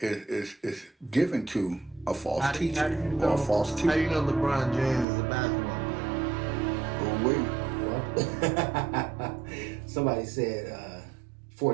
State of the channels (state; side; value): drops out; left; at 5.1 s